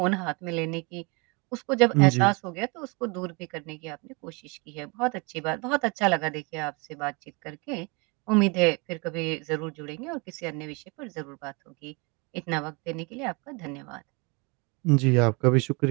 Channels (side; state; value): left; quieter; 29.5 dB